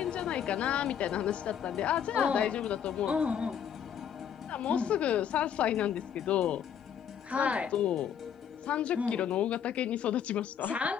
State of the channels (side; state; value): right; quieter; 8.6 dB